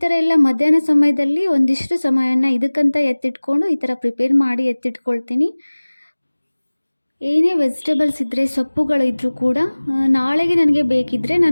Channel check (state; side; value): inverted; both; correlation -1.00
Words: ಥರ ಎಲ್ಲ ಮಧ್ಯಾಹ್ನ ಸಮಯದಲ್ಲಿ ಒಂದಿಷ್ಟು ಸಮಯನ ಇದಕ್ಕಂತ ಎತ್ತಿಟ್ಕೊಂಡು ಈ ಥರ ಪ್ರಿಪೇರ್ ಮಾಡಿ ಎತ್ತಿಟ್ಕೊಳ್ತೀನಿ. ಏನೇ ವೆಜಿಟೇಬಲ್ಸ್ ಇದ್ದರೆ, ಸೊಪ್ಪುಗಳಿದ್ದರೂ ಕೂಡ ನಾಳೆಗೆ ನನಗೆ ಬೇಕಿದ್ದರೆ